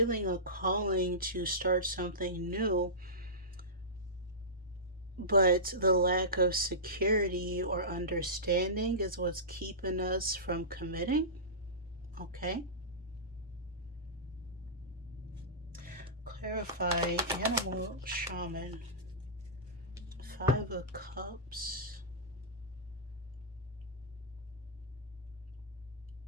a calling to start something new, but the lack of security or understanding is what's keeping us from committing. Okay. Clarify animal shaman. Five of Cups.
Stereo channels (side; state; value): both; normal; correlation -0.19